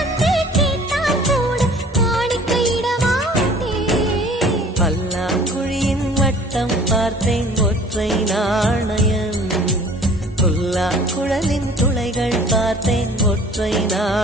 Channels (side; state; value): both; normal; correlation 0.50